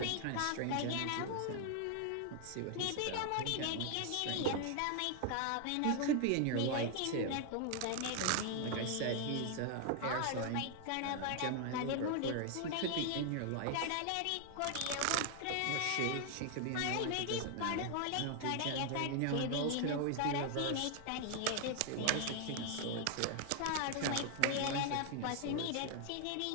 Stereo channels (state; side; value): different; both; correlation 0.00